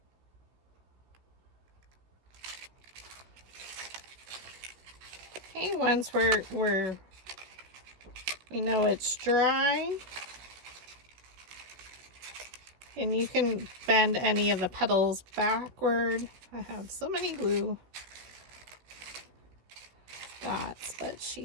Okay, once we know it's dry, and you can bend any of the petals backward. I have so many glue dots, but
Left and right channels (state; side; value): late; left; 16 ms